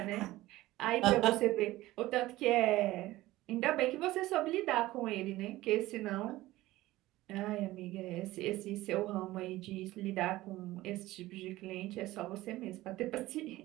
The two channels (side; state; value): left; quieter; 17.3 dB